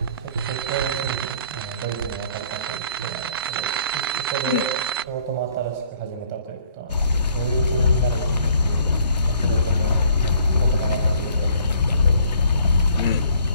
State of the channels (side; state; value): both; inverted; correlation -0.59